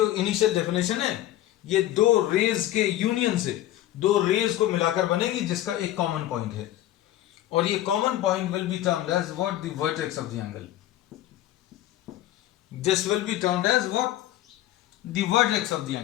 इनिशियल डेफिनेशन है ये दो रेज के यूनियन से, दो रेज को मिलाकर बनेगी जिसका एक कॉमन पॉइंट है, और ये common point will be termed as what, the vertex of the angle. This will be termed as what, the vertex of the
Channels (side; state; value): right; quieter; 14.0 dB